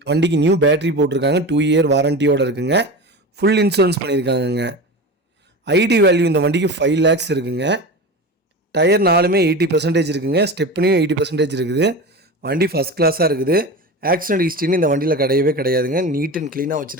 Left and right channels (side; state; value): both; normal; correlation 0.28